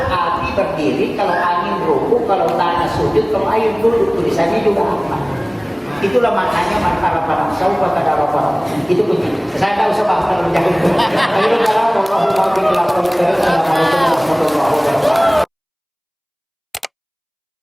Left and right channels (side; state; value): both; identical; correlation 1.00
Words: api berdiri, kalau angin ruku, kalau tanah sujud, kalau air duduk. Tulisannya juga Ahmad. Itulah maknanya man arafa nafsahu faqad arafa rabbah. Itu kunci. Saya tak usah bahas terlalu jauh.